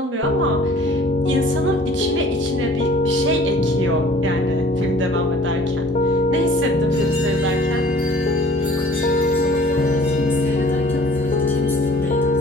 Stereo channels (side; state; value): both; normal; correlation 0.51